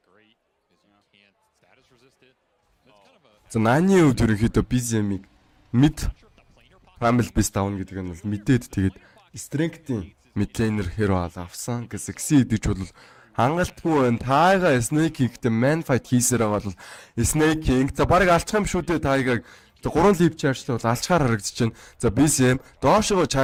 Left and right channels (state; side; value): identical; both; correlation 1.00